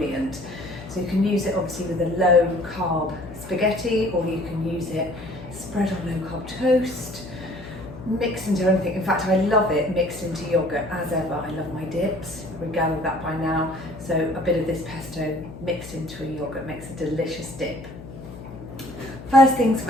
So you can use it obviously with a low carb spaghetti, or you can use it spread on low carb toast, mixed into anything. In fact, I love it mixed into yogurt as ever. I love my dips, we've gathered that by now. So a bit of this pesto mixed into a yogurt makes a delicious dip. First things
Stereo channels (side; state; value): left; noise; hum, 14 dB below the sound